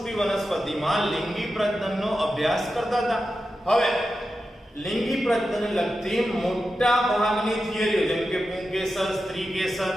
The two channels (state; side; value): normal; both; correlation 0.91